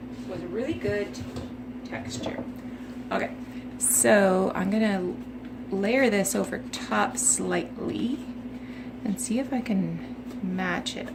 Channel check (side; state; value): both; identical; correlation 1.00